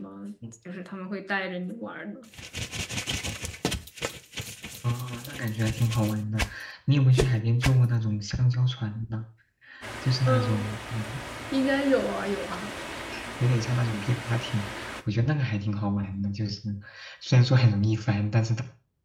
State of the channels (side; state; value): both; identical; correlation 1.00